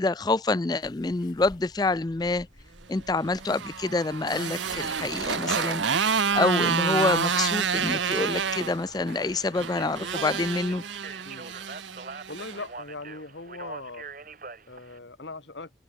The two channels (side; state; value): both; normal; correlation 0.34